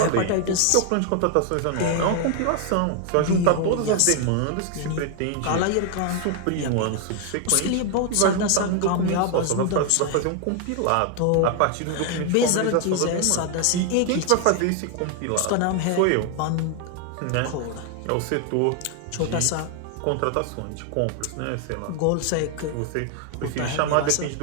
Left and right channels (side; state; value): both; different; correlation 0.00